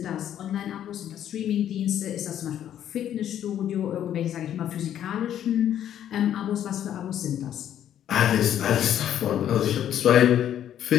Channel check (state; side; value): quieter; right; 10.6 dB